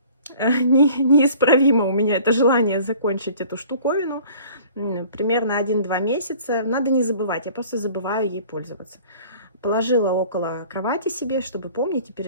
неисправимо у меня это желание закончить эту штуковину. Примерно 1-2 месяца. Надо не забывать, я просто забываю ей пользоваться. Положила около кровати себе, чтобы помнить и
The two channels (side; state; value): both; inverted; correlation -0.49